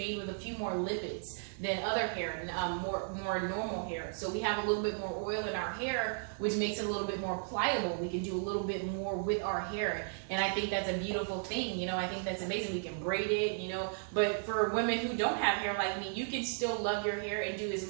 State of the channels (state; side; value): silent; left; 55 dB below the other